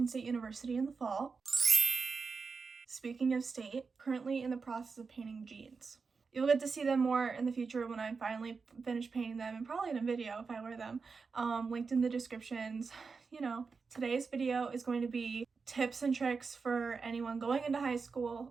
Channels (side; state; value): left; quieter; 4.9 dB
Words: State University in the fall. Speaking of state, currently in the process of painting jeans. You'll get to see them more in the future when I finally finish painting them, and probably in a video if I wear them, linked in the descriptions. Today's video is going to be tips and tricks for anyone going into high